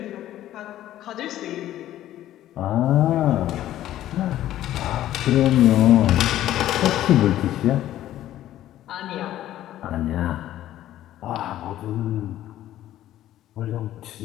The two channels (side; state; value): right; quieter; 13.1 dB